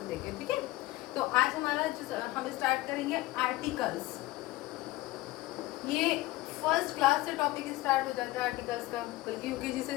देखें, ठीक है। तो आज हम स्टार्ट करेंगे आर्टिकल्स। ये फर्स्ट क्लास से टॉपिक स्टार्ट हो जाता है आर्टिकल्स का, बल्कि यूकेजी से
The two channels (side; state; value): right; quieter; 18.2 dB